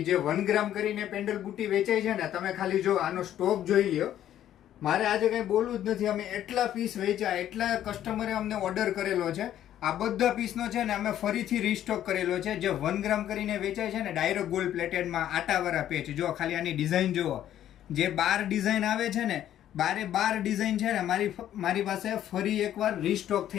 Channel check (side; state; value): right; quieter; 11.5 dB